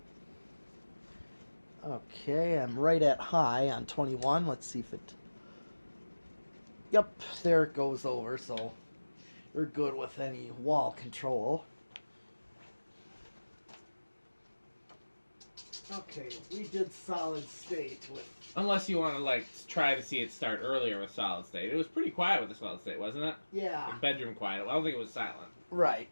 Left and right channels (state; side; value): inverted; both; correlation -1.00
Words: Okay, I'm right at high on 21. Let's see if it... Yep, there it goes over, so you're good with any wall control. Okay, we did solid state with... Unless you want to, try to see it start earlier with solid state. It was pretty quiet with the solid state, wasn't it? Yeah. Like bedroom quiet. I don't think it was silent. Right,